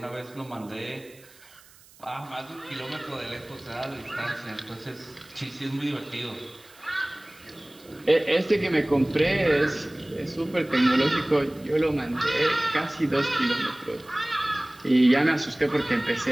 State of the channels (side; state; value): right; noise; hiss, 25 dB below the sound